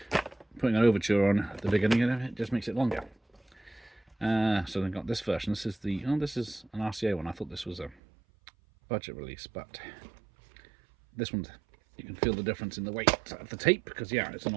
putting an overture on at the beginning of it just makes it longer. So they've got this version. This is the this is an RCA one. I thought this was a budget release, but this one, you can feel the difference in the weight of the tape, because yeah, it's an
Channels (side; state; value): left; drops out; at 8.0 s